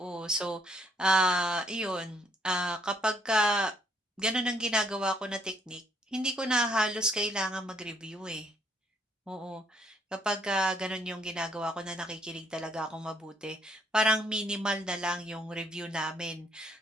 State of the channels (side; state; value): both; normal; correlation 0.68